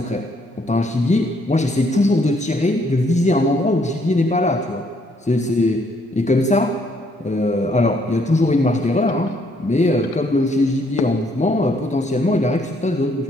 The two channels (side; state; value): both; normal; correlation 0.68